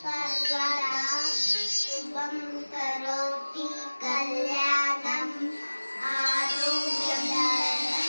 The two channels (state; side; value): inverted; both; correlation -1.00